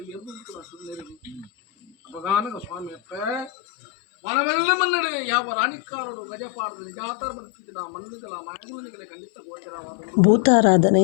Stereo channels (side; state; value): right; drops out; at 3.5 s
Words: ಎದ್ದು ಸುಂದರಿ ಅಪಗಾನಗ ಸ್ವಾಮಿ ಅಪ್ಪ ಮನವೆಲ್ಲ ಮನ್ನಡೆ ಯಾವ ರಾಣಿಕಾರರು ಗಜಪಾಡದ ನಿಜಾತಾರ ಬರುತ್ತಿದ್ದ ಮನ್ನಿಗಳ ಮಾತುಗಳಿಗೆ ಖಂಡಿತ ಗೋಚರವಾದ